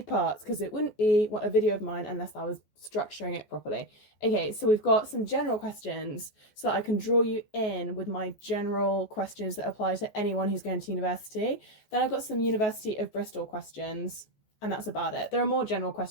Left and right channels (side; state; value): right; late; 14 ms